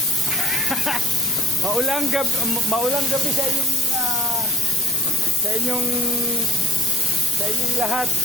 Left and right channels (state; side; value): normal; both; correlation 0.47